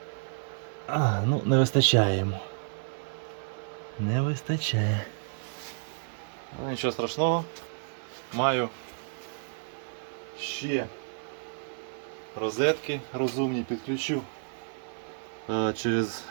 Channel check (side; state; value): left; silent; 57 dB below the other